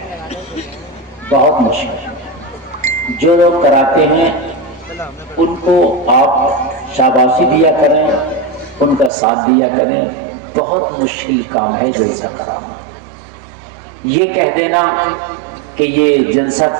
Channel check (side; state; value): left; drops out; at 9.1 s